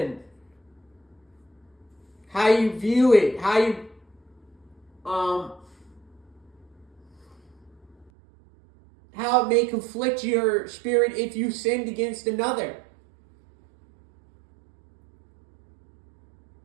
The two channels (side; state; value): left; drops out; at 8.1 s